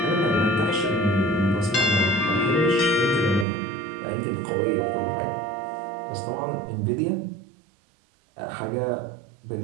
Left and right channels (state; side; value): drops out; left; at 3.5 s